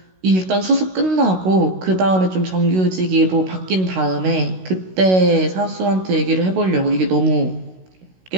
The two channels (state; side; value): late; left; 16 ms